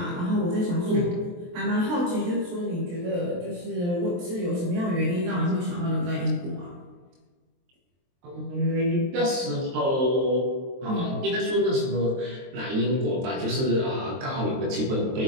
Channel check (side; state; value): left; late; 23 ms